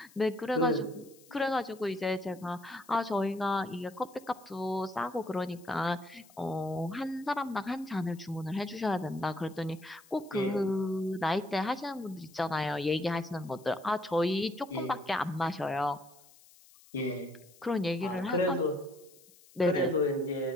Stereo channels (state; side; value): noise; left; hiss, 25 dB below the sound